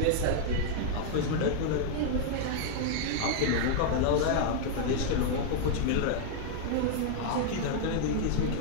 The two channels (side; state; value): both; different; correlation 0.00